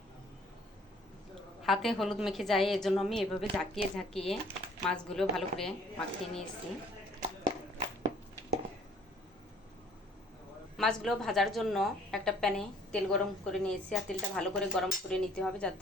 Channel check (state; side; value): normal; both; correlation 0.57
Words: হাতে হলুদ মেখে যায়, এজন্য আমি এভাবে ঝাঁকিয়ে ঝাঁকিয়ে মাছগুলো ভালো করে মাখিয়ে নিয়েছি। মাছগুলো ভাজার জন্য একটা প্যানে তেল গরম করে নিয়েছি, আর তেলটা ভালো করে গরম করে নিতে হবে